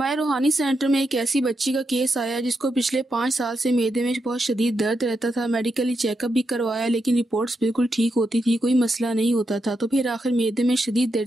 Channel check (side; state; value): both; normal; correlation 0.84